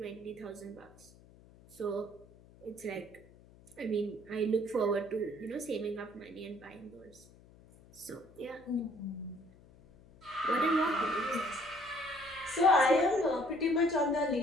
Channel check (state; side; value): noise; left; hum, 24 dB below the sound